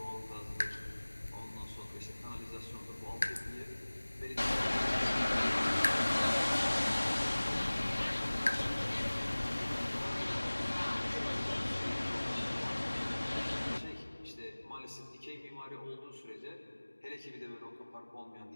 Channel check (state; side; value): inverted; both; correlation -1.00